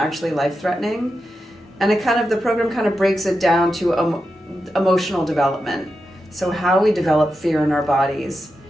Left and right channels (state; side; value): normal; both; correlation 0.89